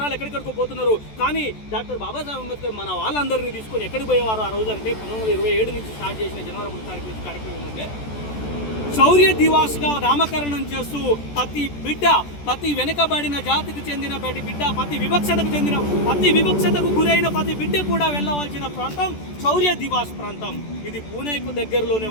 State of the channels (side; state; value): right; late; 14 ms